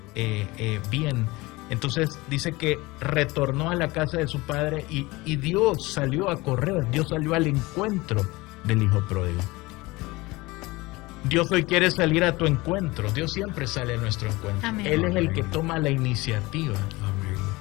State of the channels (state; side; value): quieter; right; 21.9 dB